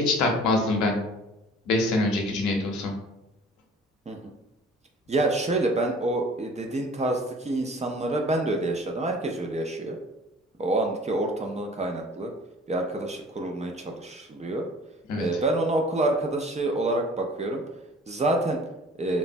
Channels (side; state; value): both; normal; correlation 0.48